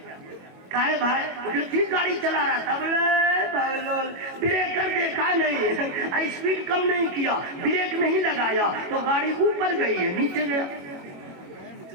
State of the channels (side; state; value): left; late; 21 ms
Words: کہے بھائی جو ٹھیک گاڑی چلا رہا تھا, بولے بریکر دیکھا نہیں, اسپیڈ کم نہیں کیا, بریک نہیں لگایا تو گاڑی اوپر گئی ہے نیچے گیا.